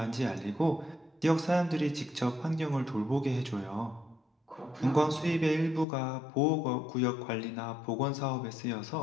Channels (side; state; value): right; drops out; at 5.9 s